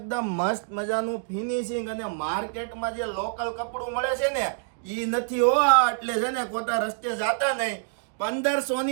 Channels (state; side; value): silent; left; digital silence